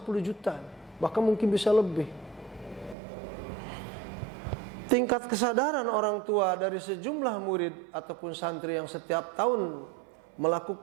juta, bahkan mungkin bisa lebih. Tingkat kesadaran orang tua dari sejumlah murid ataupun santri yang setiap tahun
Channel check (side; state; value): left; drops out; at 3.0 s